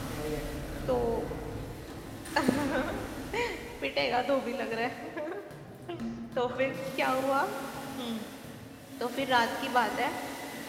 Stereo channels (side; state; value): both; identical; correlation 1.00